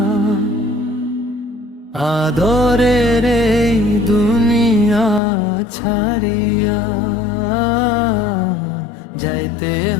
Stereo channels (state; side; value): drops out; right; at 5.2 s